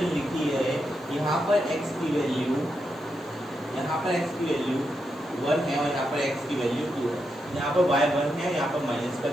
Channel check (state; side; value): noise; left; hiss, 29 dB below the sound